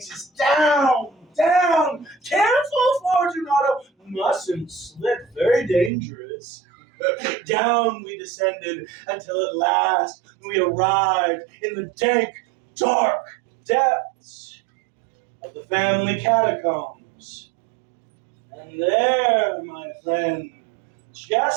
down. Careful, Fortunato, mustn't slip, very dangerous. Down we descended until at last we arrived in the dank, dark depths of the family catacombs. And there, my friend,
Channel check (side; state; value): left; drops out; at 5.9 s